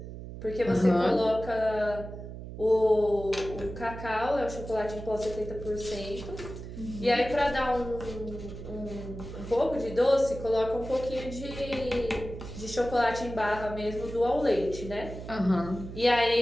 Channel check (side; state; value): right; noise; hum, 11 dB below the sound